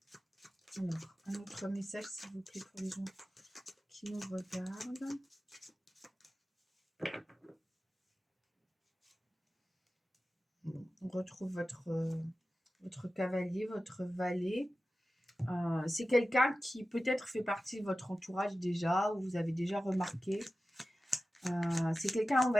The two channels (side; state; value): both; normal; correlation 0.94